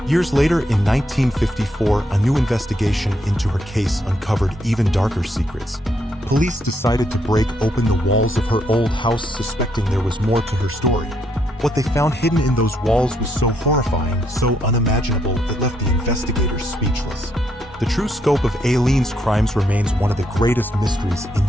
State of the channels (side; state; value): both; normal; correlation 0.75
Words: Years later, in 1954, a new investigation into her case uncovered even darker secrets. Police decided to break open the walls of her old house, suspecting there was more to her story. What they found hidden in those walls was so horrifying, so unimaginable, it left the investigators speechless. The true scope of Aileen's crimes remains one of the greatest mysteries